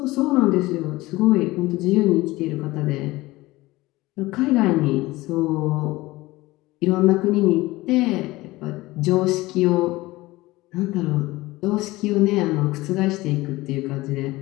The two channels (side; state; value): right; quieter; 19.5 dB